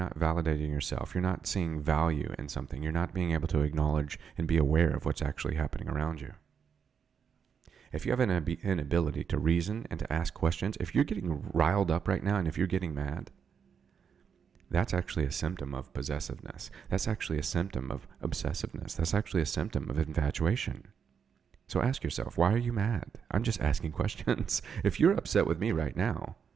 validating yourself. You're not seeing value in something. You're not being able to acknowledge and be aware of what's actually happening around you. If you have an inability to reason and to ask questions, if you're getting riled up right now and if you're getting mad, that's actually a symptom of possessiveness. That's actually a symptom of obsessiveness. That's actually a symptom of infatuation. So ask yourself, why are you mad? I'm just asking questions. If you're upset with me right now,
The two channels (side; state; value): left; quieter; 7.0 dB